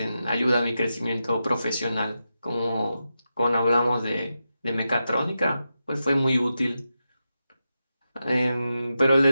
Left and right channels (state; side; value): inverted; both; correlation -0.89